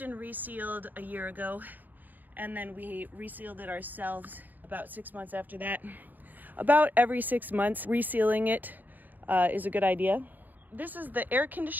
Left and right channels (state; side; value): late; left; 0.085 ms